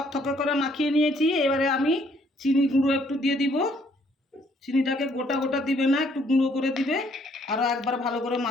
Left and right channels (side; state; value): both; normal; correlation 0.65